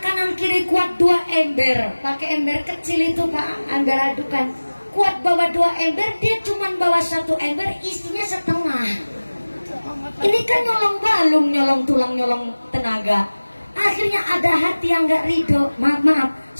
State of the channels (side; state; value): both; inverted; correlation -1.00